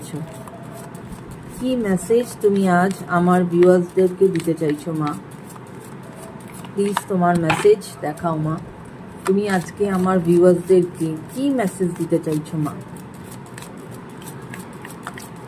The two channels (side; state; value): both; identical; correlation 1.00